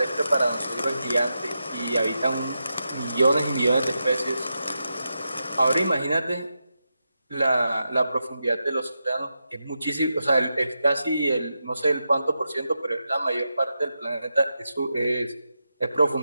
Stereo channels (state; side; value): inverted; both; correlation -0.88